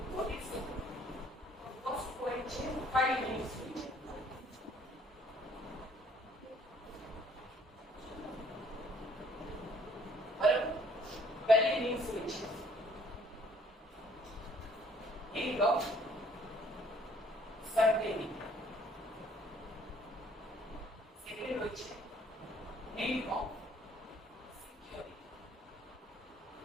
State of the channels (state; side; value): normal; both; correlation 0.60